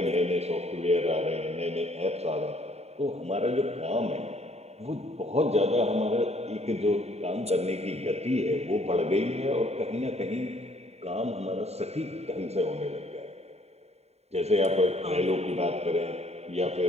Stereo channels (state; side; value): late; left; 0.31 ms